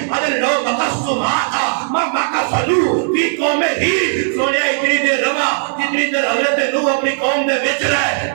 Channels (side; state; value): left; silent; 62 dB below the other